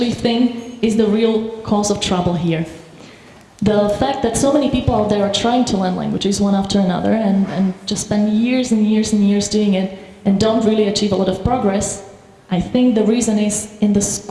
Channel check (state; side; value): identical; both; correlation 1.00